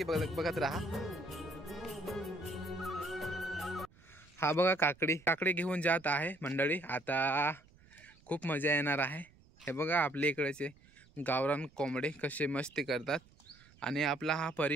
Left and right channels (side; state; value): right; noise; rumble, 27 dB below the sound